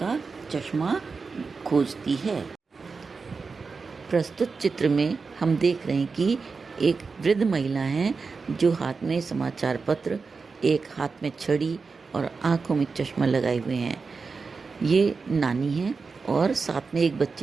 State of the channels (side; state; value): left; quieter; 4.6 dB